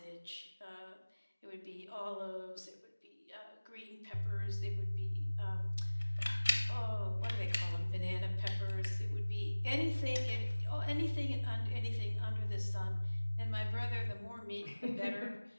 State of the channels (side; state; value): both; inverted; correlation -1.00